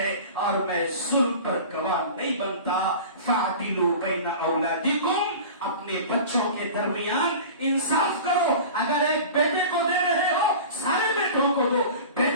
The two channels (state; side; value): inverted; both; correlation -0.36